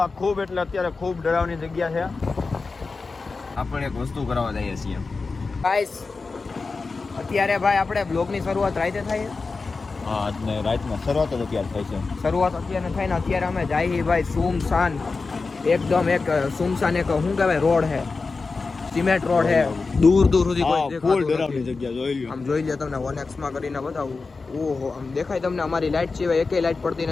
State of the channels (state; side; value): quieter; right; 4.2 dB